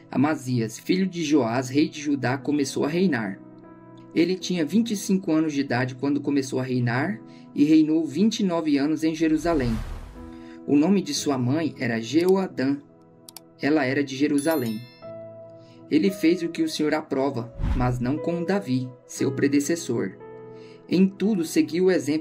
Amazias, filho de Joás, rei de Judá, começou a reinar. Ele tinha 25 anos de idade quando começou a reinar e reinou 29 anos em Jerusalém. O nome de sua mãe era Jeoadã. Ela era de Jerusalém. Ele fez o que o Senhor aprova, mas não como Davi, seu predecessor. Em tudo seguiu o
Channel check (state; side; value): identical; both; correlation 1.00